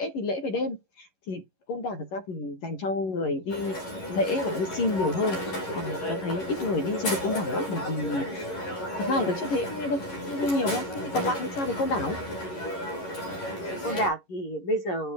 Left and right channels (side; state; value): right; late; 11 ms